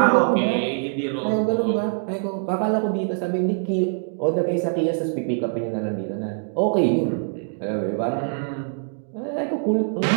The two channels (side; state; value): left; silent; 63 dB below the other